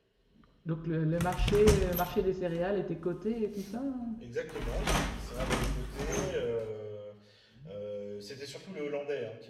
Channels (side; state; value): both; identical; correlation 1.00